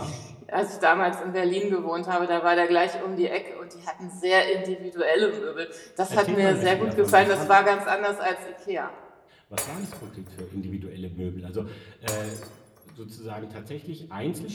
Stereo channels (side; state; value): both; identical; correlation 1.00